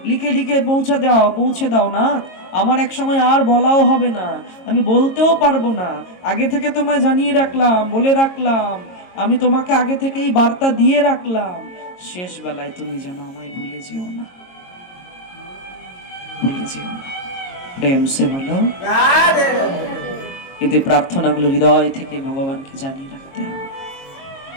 লিখে লিখে পৌঁছে দাও না। আমার এক সময় আর বলাও হবে না, আমি বলতেও পারবো না। আগে থেকে তোমায় জানিয়ে রাখলাম, বলে রাখলাম, আমি তোমাকে আগে থেকেই বার্তা দিয়ে রাখলাম। শেষ বেলায় তুমি যেন আমায় ভুলে যেও না, ভুলে যেও না। প্রেম সে বলো। কিন্তু এই প্রার্থনাগুলো হৃদয় থেকে ভগবানকে জানিয়ে রাখতে হবে।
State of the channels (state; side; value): late; right; 22 ms